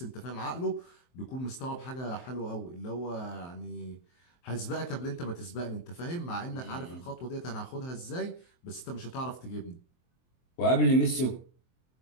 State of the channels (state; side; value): late; right; 23 ms